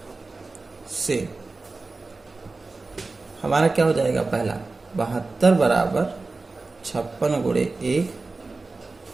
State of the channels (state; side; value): quieter; left; 3.6 dB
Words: से हमारा क्या हो जाएगा, पहला 72 बराबर 56 गुणे 1